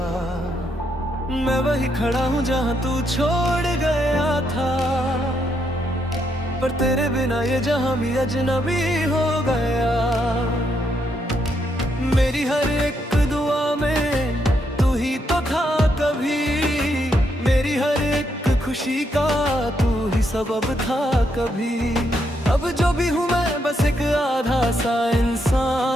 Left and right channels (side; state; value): both; normal; correlation 0.77